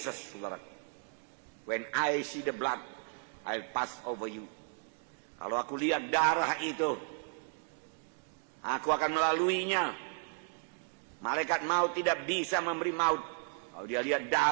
saudaraku. When I see the blood, I'll pass over you. Kalau aku lihat darah itu, aku akan melaluinya. Malaikat maut tidak bisa memberi maut. Kalau dia lihat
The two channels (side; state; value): left; silent; 55 dB below the other